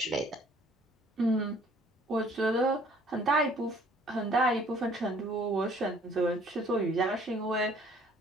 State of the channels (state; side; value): normal; both; correlation 0.57